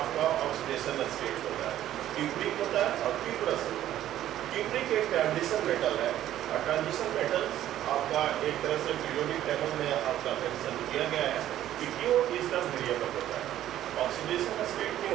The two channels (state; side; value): quieter; left; 12.5 dB